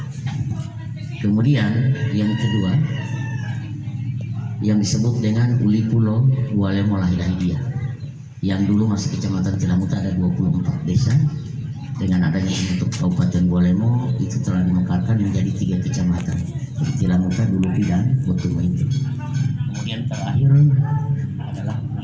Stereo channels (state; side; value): identical; both; correlation 1.00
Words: Kemudian yang kedua yang disebut dengan Uli Pulo Bualemo Lahidahidia, yang dulu masih kecamatan Tilamuta, ada 24 desa. Dengan adanya bentuk Kabupaten Bualemo itu telah dimekarkan menjadi 3 kecamatan, Tilamuta, Dulupi, dan Botumo itu. Kemudian terakhir adalah